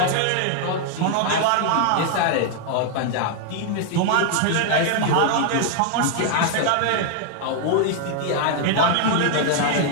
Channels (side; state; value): both; different; correlation 0.00